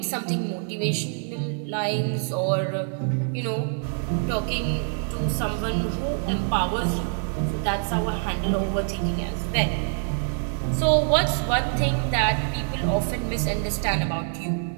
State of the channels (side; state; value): left; silent; digital silence